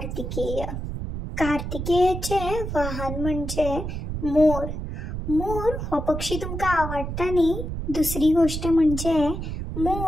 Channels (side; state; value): right; noise; rumble, 5 dB below the sound